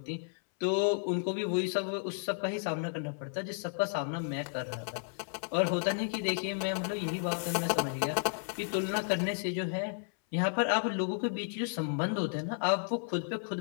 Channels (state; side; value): silent; right; 56 dB below the other